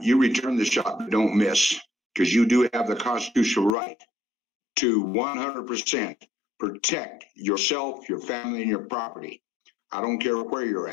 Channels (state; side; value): drops out; right; at 3.7 s